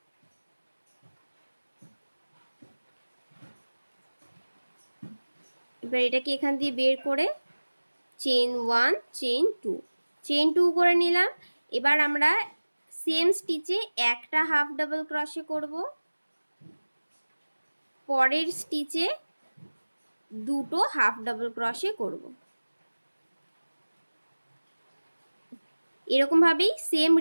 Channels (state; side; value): inverted; both; correlation -1.00